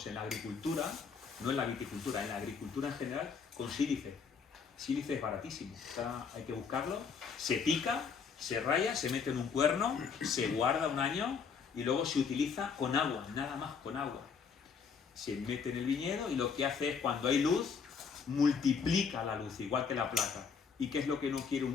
en la agricultura, no en la viticultura, en la agricultura en general, con sílice. Sílice es baratísimo, hay que buscarlo, se pica, se raya, se mete en un cuerno, se guarda un año y luego se utiliza con agua, nada más con agua. Se mete en el viñedo y lo que hace es, cuando hay luz, multiplica la luz, igual que la placa. ¿Y qué es lo que no quiere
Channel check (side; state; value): right; quieter; 5.9 dB